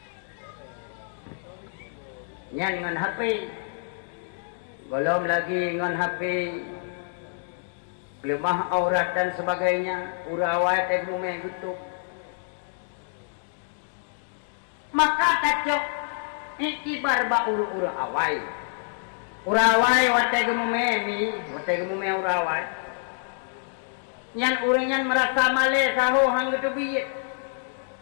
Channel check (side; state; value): right; silent; digital silence